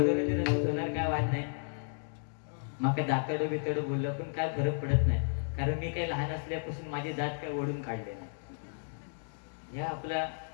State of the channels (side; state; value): right; silent; digital silence